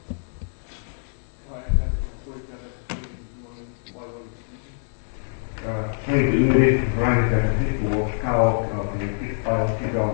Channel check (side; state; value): right; silent; digital silence